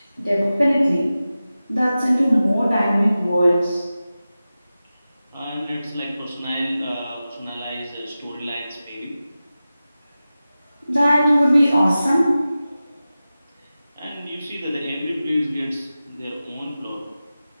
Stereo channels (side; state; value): both; inverted; correlation -0.94